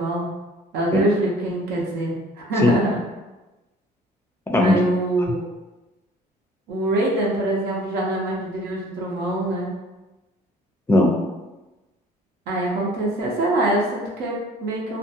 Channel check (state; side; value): normal; both; correlation 0.53